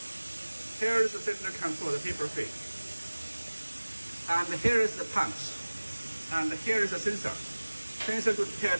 Here is the cylinder control, the paper feed. And here is the punch. And here is the sensor. Sensor to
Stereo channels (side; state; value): both; inverted; correlation -1.00